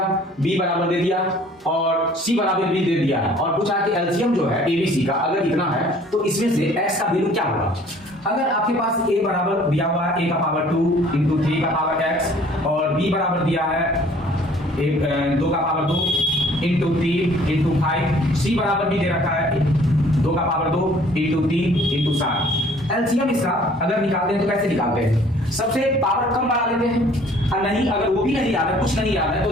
बी बराबर दे दिया और सी बराबर बी दे दिया है, और पूछा कि एलसीएम जो है एबीसी का अगर इतना है तो इसमें से एक्स का वैल्यू क्या होगा। अगर आपके पास a बराबर दिया हुआ है a का पावर 2 इंटू 3 का पावर x, और b बराबर दिया है 2 का पावर 2 इंटू 3 इंटू 5, c बराबर भी दे रखा है 2 का पावर 2 इंटू 3 इंटू 7। एलसीएम इसका अगर निकालते हैं तो कैसे निकालते हैं? सबसे पावर कम बढ़ा देते हैं, और नहीं अगर वो भी नहीं याद है, कुछ नहीं याद है, तो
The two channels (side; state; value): both; normal; correlation 0.55